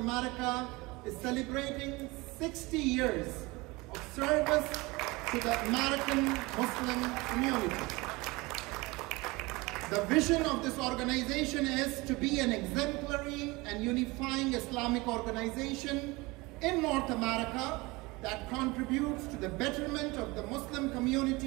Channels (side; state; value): left; quieter; 23.5 dB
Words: is celebrating 60 years of service to the American Muslim community. The vision of this organization is to be an exemplary and unifying Islamic organization in North America that contributes to the betterment of the Muslim